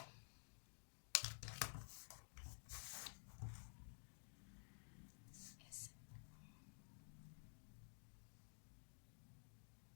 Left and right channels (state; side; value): silent; right; digital silence